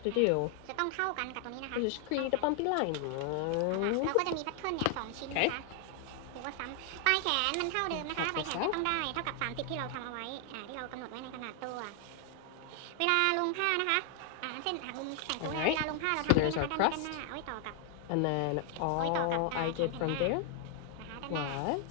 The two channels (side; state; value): both; different; correlation 0.00